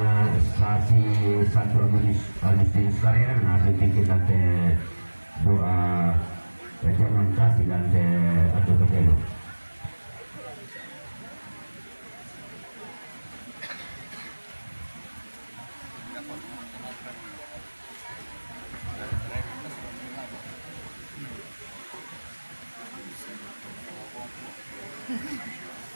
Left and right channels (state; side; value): inverted; both; correlation -1.00